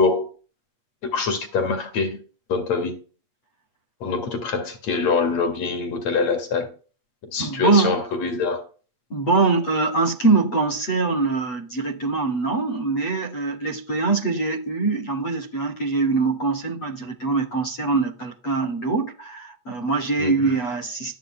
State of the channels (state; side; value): late; right; 8.1 ms